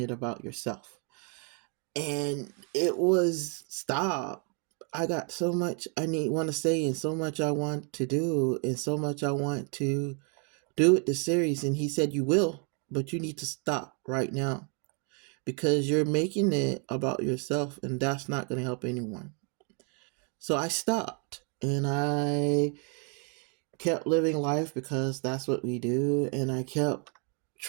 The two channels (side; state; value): left; quieter; 38.1 dB